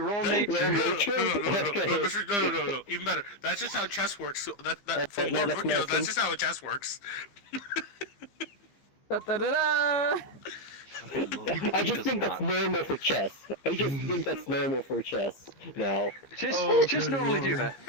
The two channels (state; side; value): late; right; 15 ms